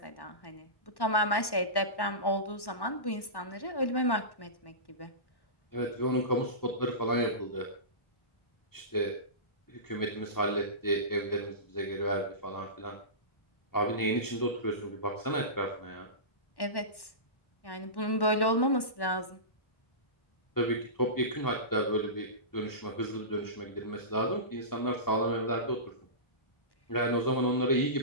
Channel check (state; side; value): late; right; 1.1 ms